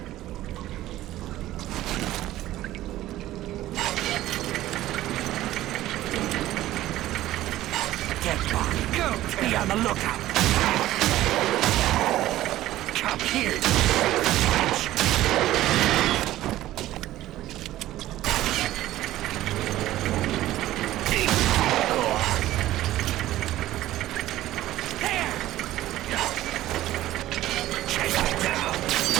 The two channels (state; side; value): quieter; left; 14.9 dB